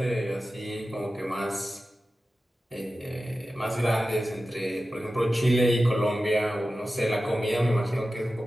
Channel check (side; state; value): both; normal; correlation 0.94